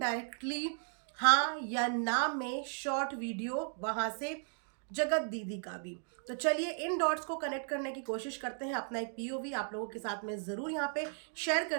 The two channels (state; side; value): silent; left; 54 dB below the other